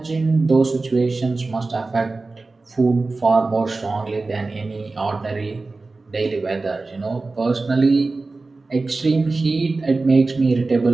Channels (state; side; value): quieter; left; 3.6 dB